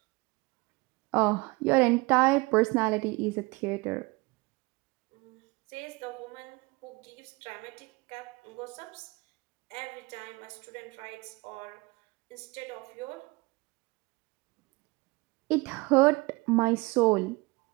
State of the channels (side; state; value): left; quieter; 24.9 dB